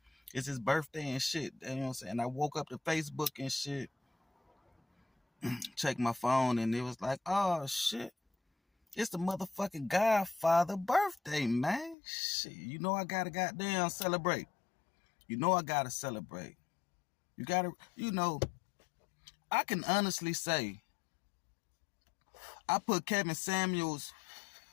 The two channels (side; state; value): right; drops out; at 12.0 s